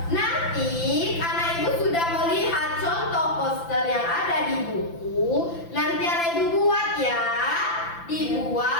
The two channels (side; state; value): right; late; 5.9 ms